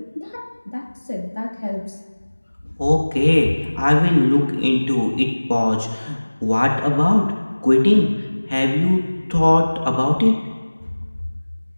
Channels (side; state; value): both; inverted; correlation -1.00